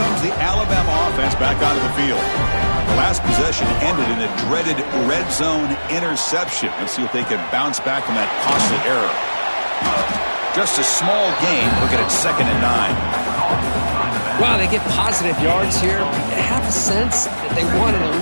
the Alabama offense back onto the field. The last possession ended in a dreaded red zone interception. Let's see if they can bounce back from that costly error. Just a small gain. Look at it, 2nd and 9. Wow, they get positive yards here. You have a sense that they wanted a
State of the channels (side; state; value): both; inverted; correlation -1.00